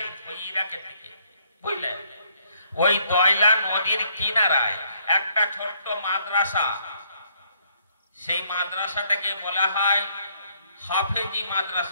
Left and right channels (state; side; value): inverted; both; correlation -0.68